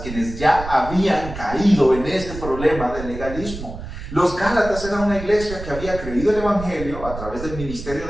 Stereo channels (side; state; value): right; noise; rumble, 10 dB below the sound